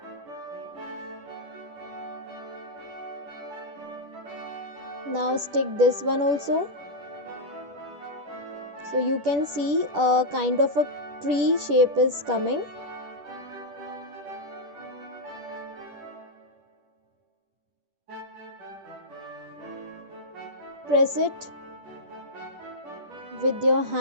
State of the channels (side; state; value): left; late; 10 ms